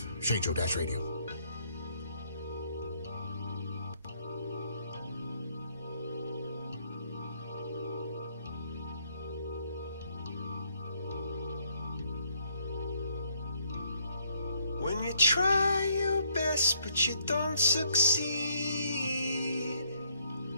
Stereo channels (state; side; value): inverted; both; correlation -0.70